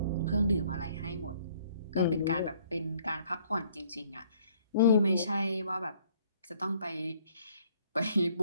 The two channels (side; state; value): both; inverted; correlation -0.62